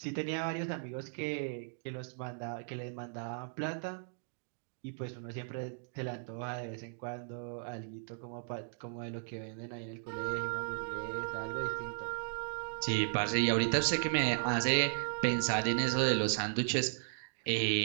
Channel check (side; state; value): left; silent; digital silence